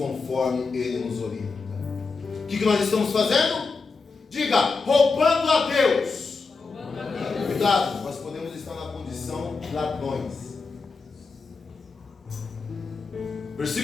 Ele nos orienta. O que nós estamos fazendo? Diga, roubando a Deus. Cuidado, nós podemos estar na condição de ladrões.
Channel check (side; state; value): right; quieter; 4.4 dB